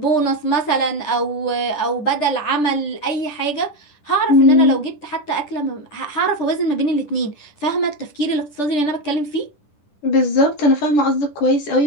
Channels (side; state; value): right; late; 10 ms